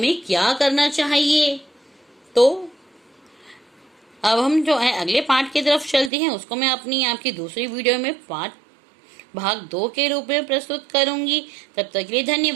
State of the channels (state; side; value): drops out; left; at 6.1 s